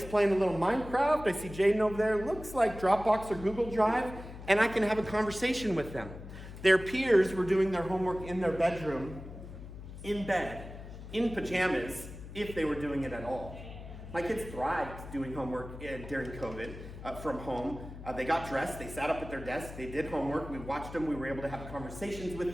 playing a little Minecraft, I see Jaden over there, looks like Dropbox or Google Drive, and I can have a conversation with them. Their peers were doing their homework in their bedroom, in bed, in pajamas, if they were doing it at all. My kids thrived doing homework during COVID from home. They got dressed, they sat up at their desks, they did homework, we watched them, we were able to have conversations with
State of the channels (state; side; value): noise; left; hum, 13 dB below the sound